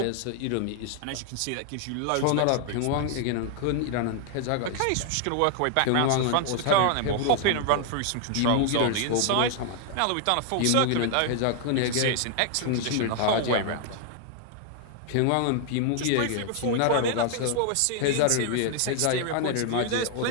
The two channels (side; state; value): both; different; correlation 0.00